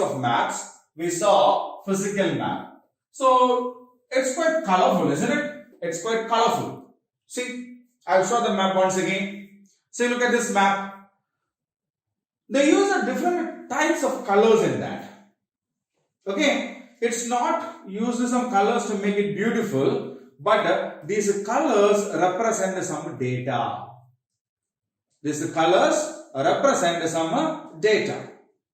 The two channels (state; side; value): identical; both; correlation 1.00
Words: maps, we saw physical map. So it's quite colorful, isn't it? It's quite colorful. See, I'll show the map once again. See, look at this map. They use different types of colors in that. Okay, it's not used some colors to make it beautiful, but these colors represent some data. These colors represent some data.